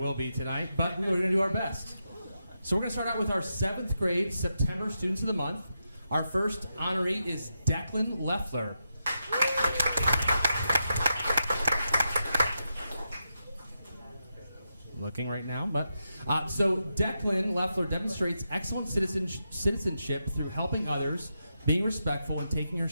be tonight, but we're going to do our best. So we're going to start out with our 7th grade September Students of the Month. Our first honoree is Declan Leffler. Looking right now, but so Declan Leffler demonstrates excellent citizenship through helping others, being respectful, and taking her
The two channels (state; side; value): inverted; both; correlation -0.86